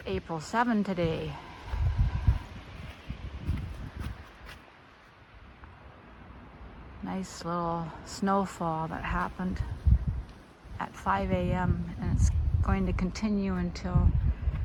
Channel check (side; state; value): both; identical; correlation 1.00